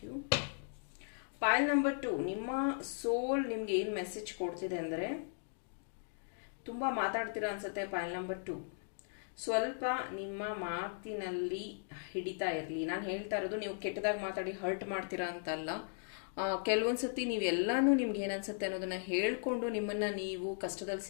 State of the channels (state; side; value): silent; right; digital silence